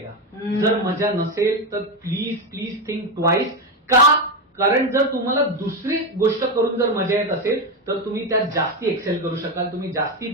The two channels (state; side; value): normal; both; correlation 0.11